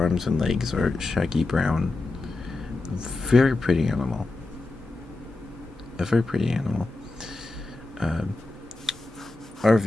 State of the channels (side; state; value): right; quieter; 3.1 dB